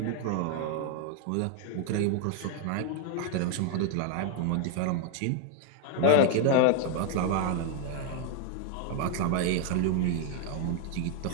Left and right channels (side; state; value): both; different; correlation 0.00